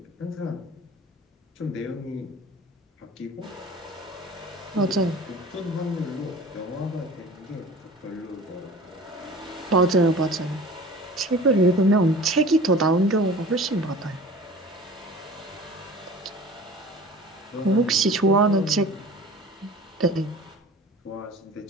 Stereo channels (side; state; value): both; normal; correlation 0.42